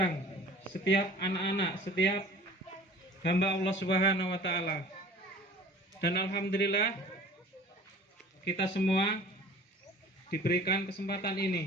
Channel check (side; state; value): both; normal; correlation 0.46